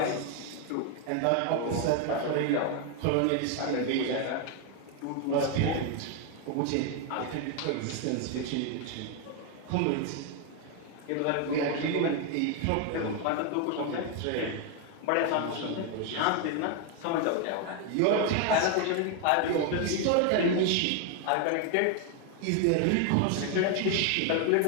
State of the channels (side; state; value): both; different; correlation 0.01